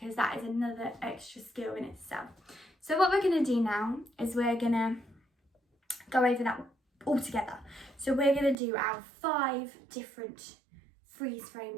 that is another extra skill in itself. So what we're going to do now is we're going to go over that all together. So we're going to do our 5 different freeze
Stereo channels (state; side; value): drops out; left; at 8.6 s